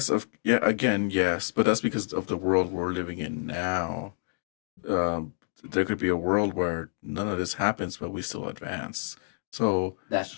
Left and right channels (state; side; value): silent; right; digital silence